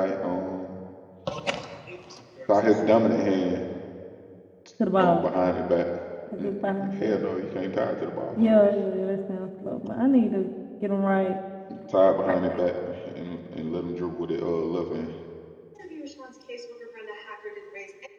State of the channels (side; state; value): both; identical; correlation 1.00